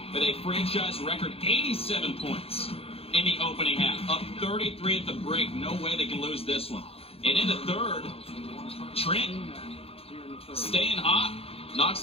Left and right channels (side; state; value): right; late; 0.28 ms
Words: with a franchise record 87 points in the opening half. Up 33 at the break. No way they can lose this one. And in the third, Trent staying hot.